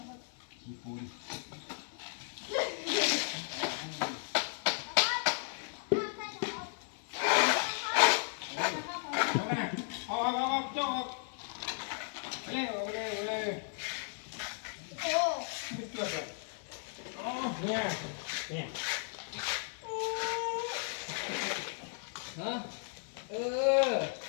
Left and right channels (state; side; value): silent; right; 54 dB below the other